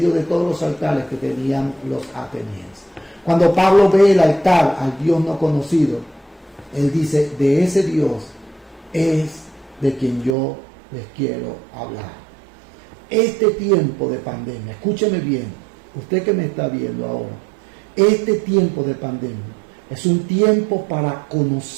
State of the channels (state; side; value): drops out; left; at 10.4 s